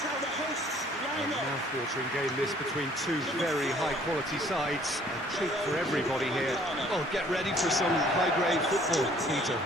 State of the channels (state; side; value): normal; both; correlation 0.58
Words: Mouth-watering game this between two very high-quality sides. A treat for everybody here. Oh, get ready for some high-grade football, Peter.